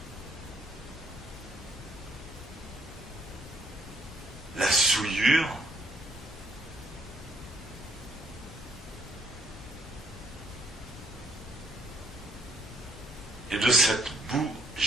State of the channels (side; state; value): both; normal; correlation 0.69